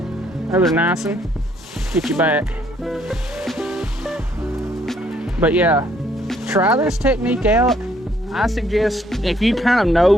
Another nice one. Get you back. But yeah, try this technique out. I suggest if you kind of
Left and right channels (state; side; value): normal; both; correlation 0.67